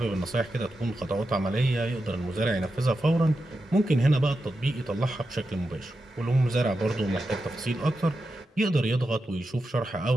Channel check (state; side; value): normal; both; correlation 0.89